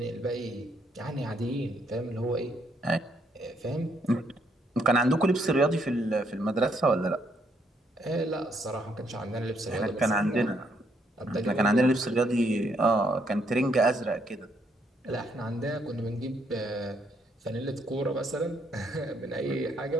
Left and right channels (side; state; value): both; normal; correlation 0.72